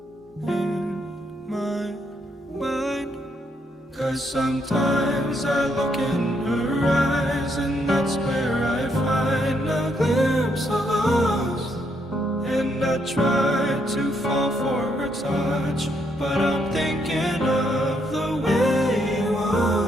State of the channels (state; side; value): normal; both; correlation 0.75